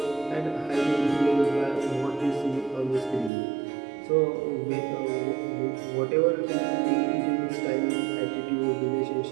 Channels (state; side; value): drops out; left; at 3.3 s